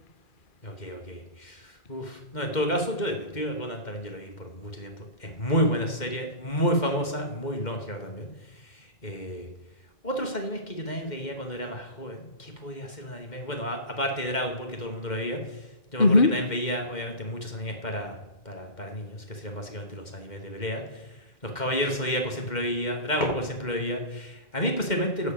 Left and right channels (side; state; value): right; late; 2.1 ms